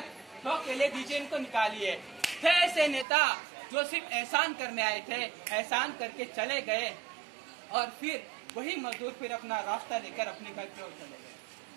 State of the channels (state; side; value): drops out; left; at 3.1 s